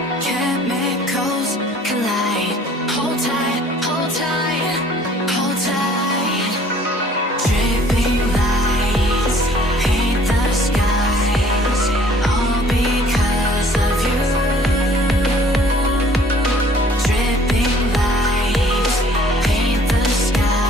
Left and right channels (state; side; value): normal; both; correlation 0.55